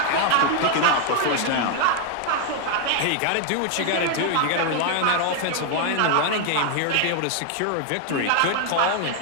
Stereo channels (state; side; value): different; both; correlation 0.00